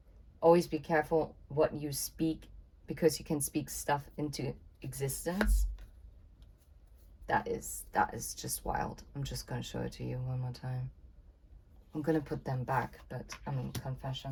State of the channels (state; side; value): identical; both; correlation 1.00